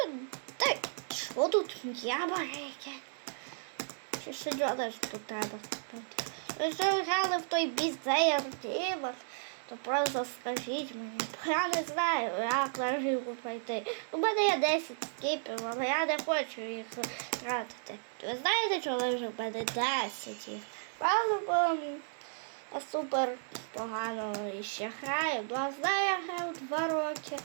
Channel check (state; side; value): silent; left; digital silence